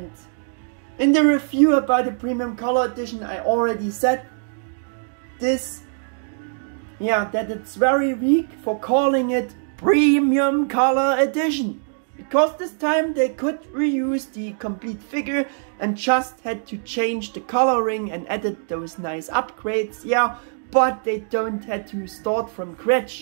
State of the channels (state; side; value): silent; left; digital silence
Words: in the review about the premium color edition I already said this, yeah, that it's very weak for calling it premium color edition. Because this time they could reuse the complete figure and just had to change the coloring and added those nice upgrades, yeah, but they don't had to start from